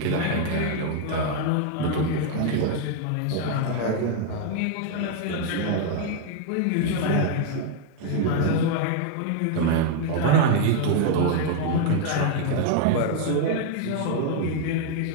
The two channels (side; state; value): both; different; correlation 0.00